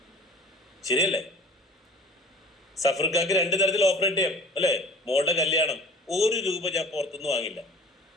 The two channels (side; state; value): both; normal; correlation 0.45